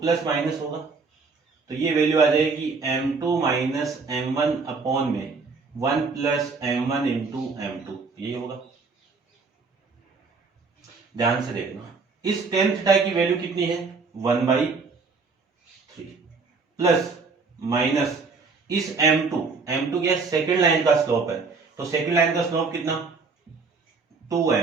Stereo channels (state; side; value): quieter; left; 4.5 dB